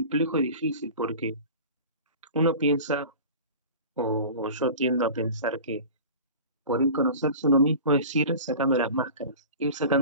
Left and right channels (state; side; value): inverted; both; correlation -0.37